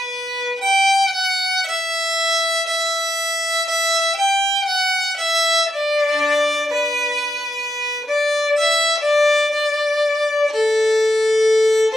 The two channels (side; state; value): both; normal; correlation 0.83